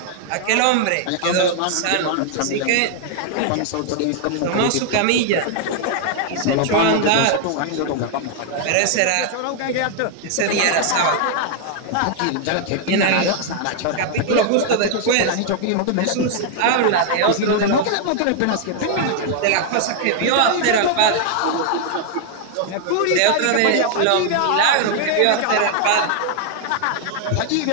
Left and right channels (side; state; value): both; different; correlation 0.00